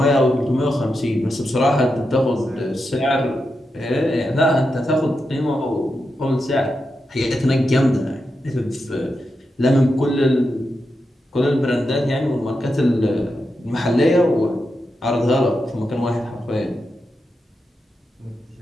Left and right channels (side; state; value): both; normal; correlation 0.87